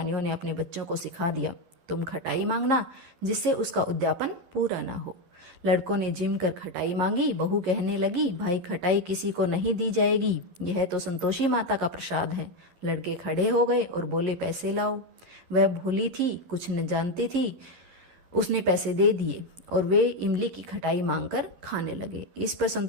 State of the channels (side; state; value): left; late; 11 ms